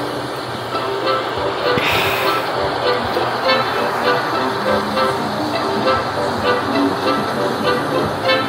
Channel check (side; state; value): both; identical; correlation 1.00